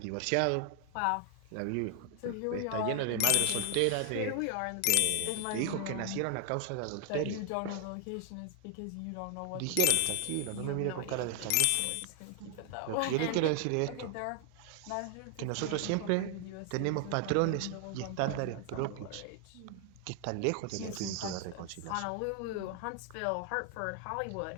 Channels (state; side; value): different; both; correlation 0.00